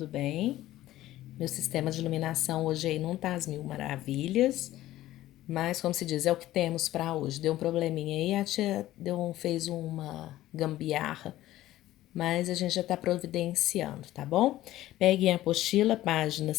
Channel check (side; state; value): right; quieter; 15.0 dB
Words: bem? Meu sistema de iluminação hoje aí não tá às mil maravilhas, mas como se diz, é o que temos para hoje. Deu um probleminha aí, a tia fez uma gambiarra, mas a gente já tá providenciando, tá bom? Peguem a apostila, página